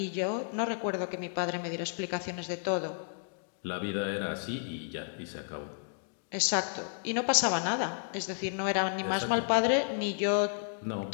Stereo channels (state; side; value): silent; right; digital silence